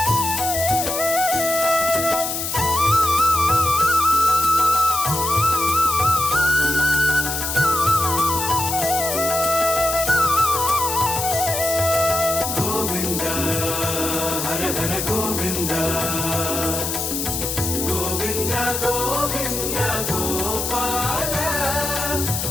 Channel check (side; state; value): left; noise; hiss, 3 dB below the sound